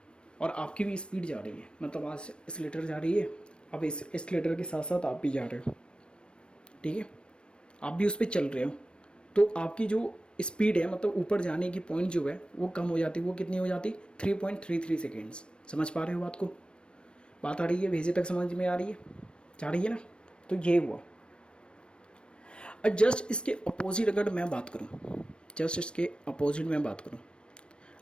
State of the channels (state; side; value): late; right; 0.056 ms